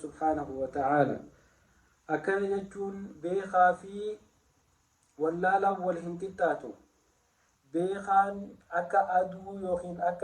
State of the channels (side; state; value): both; identical; correlation 1.00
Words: وتعالى أكن يجون بيخا في واللالا والهنكتاتو بيخان أكا أدو يوخين